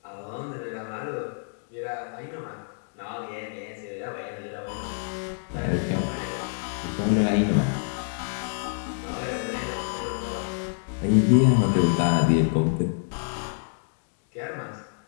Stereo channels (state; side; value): silent; right; digital silence